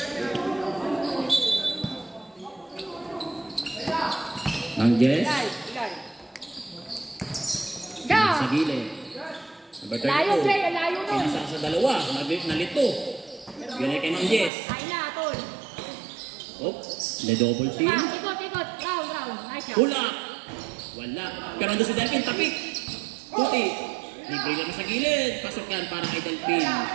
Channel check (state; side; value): drops out; left; at 14.5 s